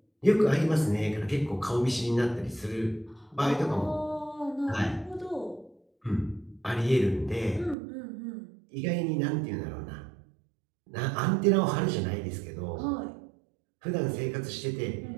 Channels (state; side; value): drops out; left; at 7.8 s